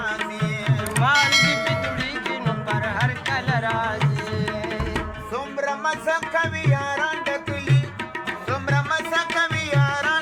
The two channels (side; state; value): both; identical; correlation 1.00